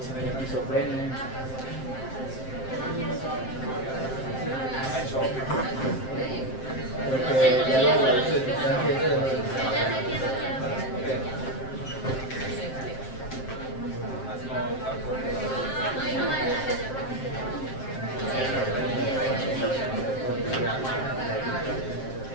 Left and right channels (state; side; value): late; right; 7.6 ms